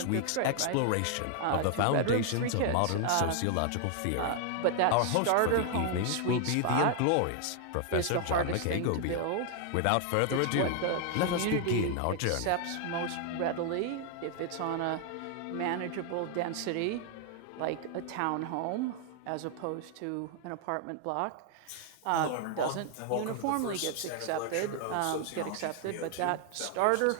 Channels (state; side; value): different; both; correlation 0.00